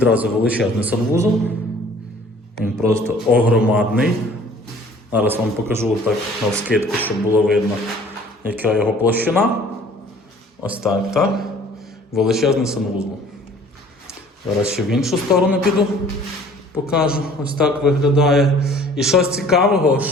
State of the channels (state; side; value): normal; both; correlation 0.52